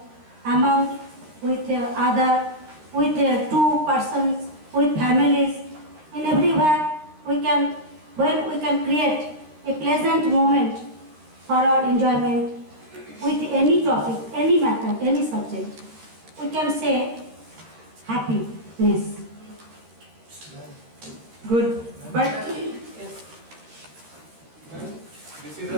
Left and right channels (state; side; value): late; left; 13 ms